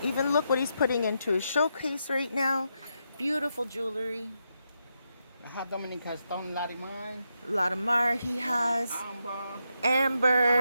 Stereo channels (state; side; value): inverted; both; correlation -0.83